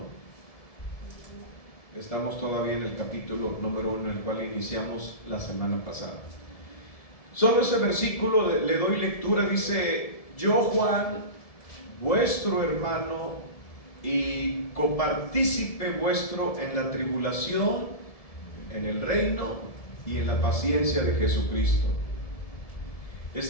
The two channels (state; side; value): late; right; 1.7 ms